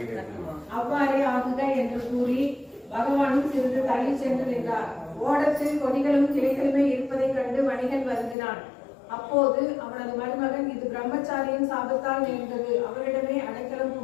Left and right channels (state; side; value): drops out; right; at 8.3 s